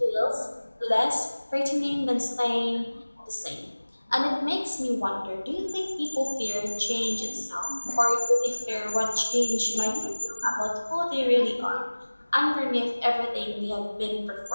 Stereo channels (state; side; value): inverted; both; correlation -1.00